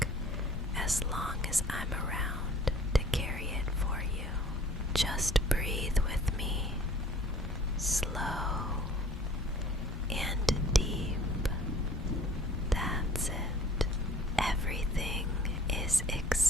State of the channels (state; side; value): normal; both; correlation 0.51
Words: as long as I'm around to carry it for you. Just breathe with me, slow and deep. That's it. Everything is